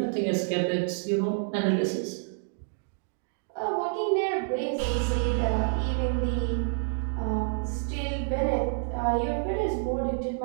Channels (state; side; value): silent; left; digital silence